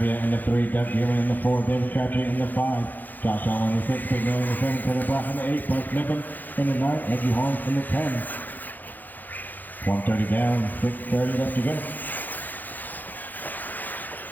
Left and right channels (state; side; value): late; right; 0.085 ms